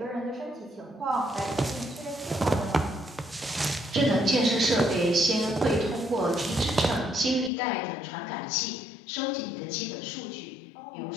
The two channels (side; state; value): right; drops out; at 7.5 s